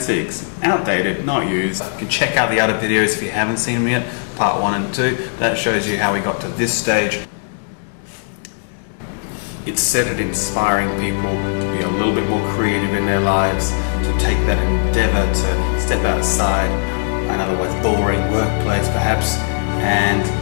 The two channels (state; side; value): silent; right; digital silence